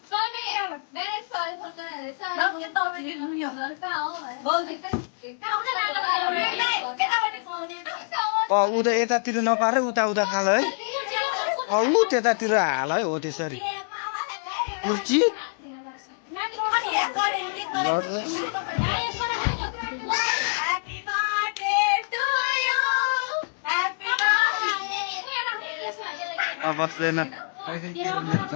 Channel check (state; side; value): silent; right; digital silence